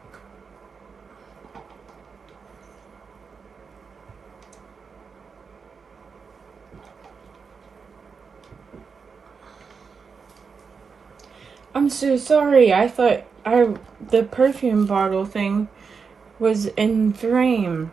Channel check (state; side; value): quieter; left; 5.5 dB